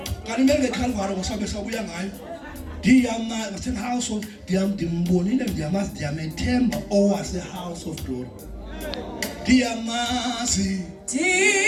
Kanimenge Calvary ngosabe sabuya ngayo Diyama ngase house of dimbonile ndiyamazi Diyamethemba owase house of glory Diyamazi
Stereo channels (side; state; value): both; identical; correlation 1.00